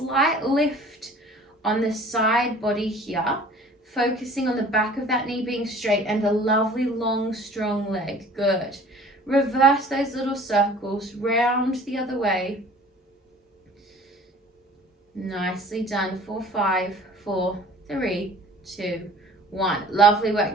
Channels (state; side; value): normal; both; correlation 0.48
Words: lift on the side body here, focusing on the back of that knee being straight and a lovely long strong leg. Good. Reverse those little circles, round the other way. Nicely done. 4, 5, 4, 3, 2, 1. Lovely work.